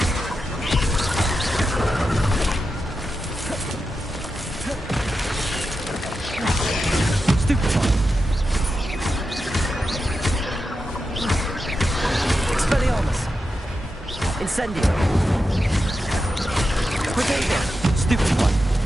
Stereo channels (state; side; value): normal; both; correlation 0.89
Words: Stupefy! Expelliarmus! Incendio! Protego! Stupefy!